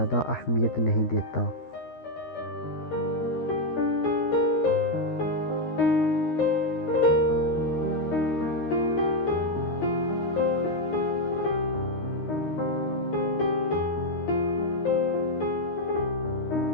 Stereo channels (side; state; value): right; late; 13 ms